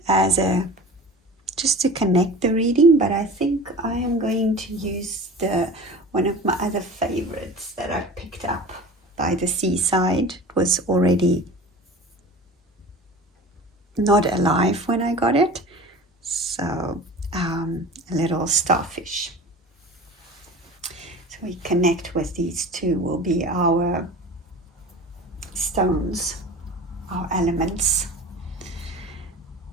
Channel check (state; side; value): normal; both; correlation 0.37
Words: just to connect the reading, but I think I am going to use one of my other favorites that I picked up by the seaside. It was already not alive when I got it, so a little starfish. So we connect with these two, will be our stones, our elements.